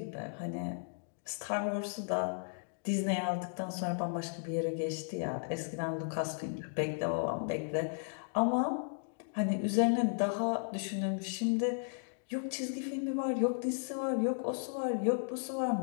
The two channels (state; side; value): silent; right; digital silence